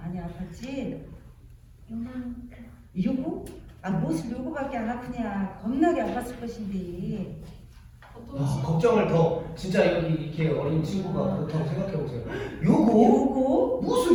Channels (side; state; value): both; identical; correlation 1.00